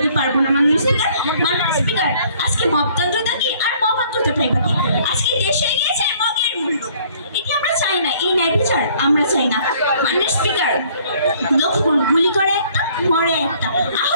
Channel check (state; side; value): inverted; both; correlation -0.59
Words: পারবো না। মাননীয় স্পিকার, আজকে মবতন্ত্রতা কি আর মবান্তরতাটাই বাকি। আজকে দেশে গিয়েছে মগের মূল্য, এটি আমরা চাই না, এই ন্যায় বিচার আমরা চাই না। মাননীয় স্পিকার, লক্ষ্য গুলি করে একটা, মরে একটা,